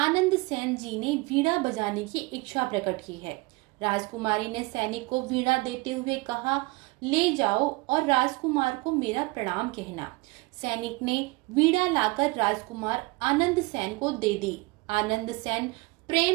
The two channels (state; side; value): quieter; left; 24.2 dB